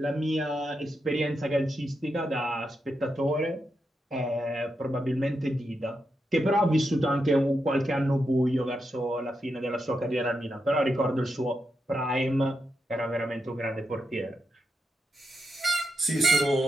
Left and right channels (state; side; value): normal; both; correlation 0.85